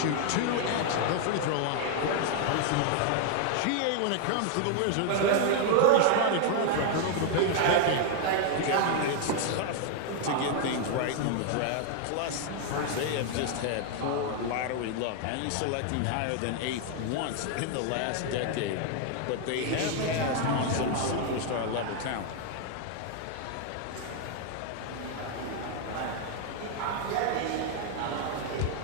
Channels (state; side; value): different; both; correlation 0.00